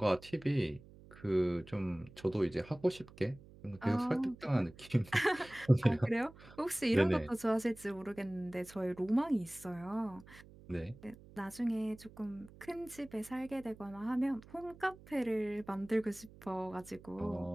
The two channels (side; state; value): right; noise; hum, 21 dB below the sound